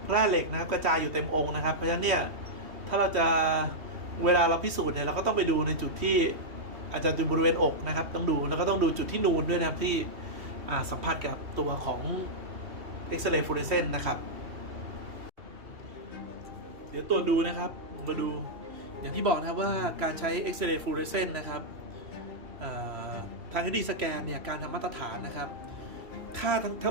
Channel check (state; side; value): late; left; 2.8 ms